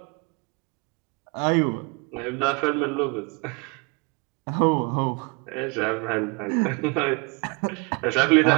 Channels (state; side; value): quieter; left; 30.3 dB